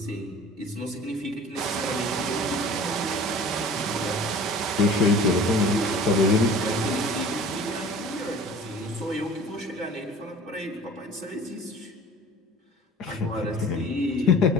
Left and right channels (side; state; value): both; normal; correlation 0.44